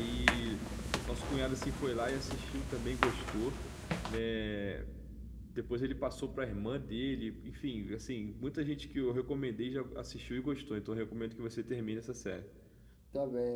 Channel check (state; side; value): identical; both; correlation 1.00